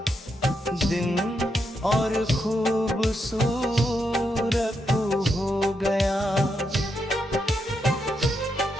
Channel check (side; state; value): both; normal; correlation 0.82